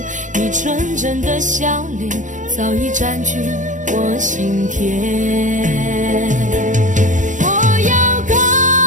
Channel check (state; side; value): late; left; 0.36 ms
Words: 你纯真的笑脸早已占据我心田。